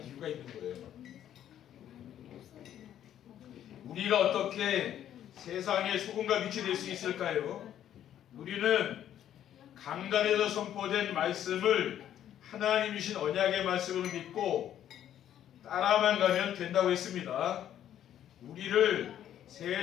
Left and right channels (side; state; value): right; quieter; 10.8 dB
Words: 이유가 있는 거예요. 우리가 어떻게 세상의 소금과 빛이 될 수 있을까요? 우리는 강단에서 선포된 말씀을 하나님 주신 언약의 말씀으로 믿고 따라만 가면 된다고 했습니다. 우리를